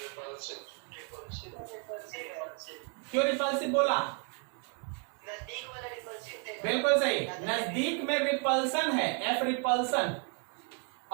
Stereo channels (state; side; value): quieter; left; 38.7 dB